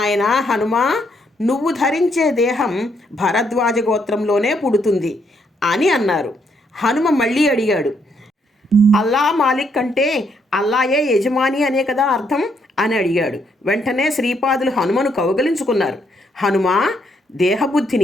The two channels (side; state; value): both; normal; correlation 0.74